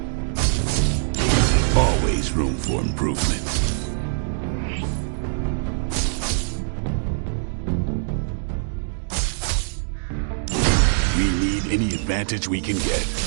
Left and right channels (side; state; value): left; silent; digital silence